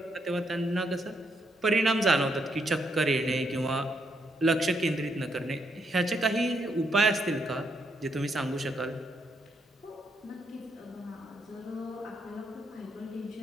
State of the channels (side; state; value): both; normal; correlation 0.77